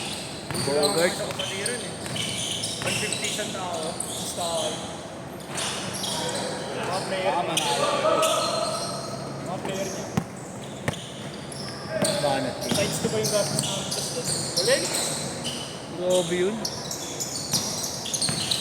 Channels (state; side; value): identical; both; correlation 1.00